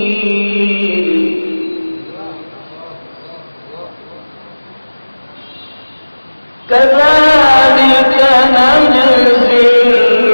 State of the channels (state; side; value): inverted; both; correlation -1.00